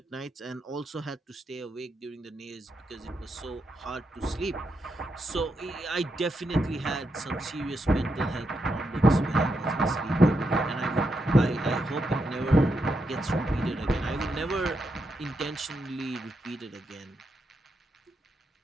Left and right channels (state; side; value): normal; both; correlation 0.83